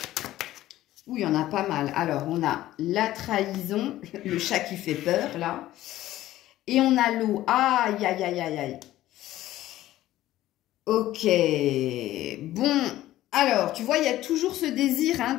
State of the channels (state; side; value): quieter; right; 14.7 dB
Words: Oui, il y en a pas mal. Alors, on a la trahison, le chat qui fait peur, là. Et on a l'eau. Aïe, aïe, aïe, aïe, aïe. Ok. Bon, alors, tu vois, il y a toujours ce désir hein,